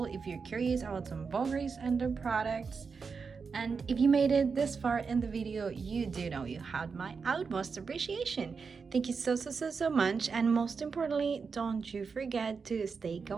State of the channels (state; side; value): quieter; left; 5.3 dB